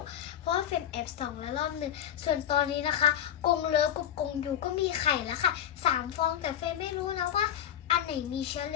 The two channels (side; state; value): right; quieter; 10.3 dB